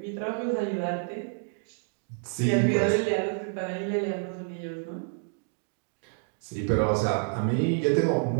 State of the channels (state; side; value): silent; left; 59 dB below the other